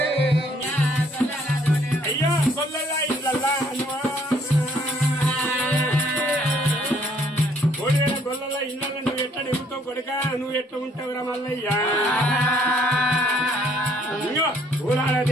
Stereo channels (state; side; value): normal; both; correlation 0.64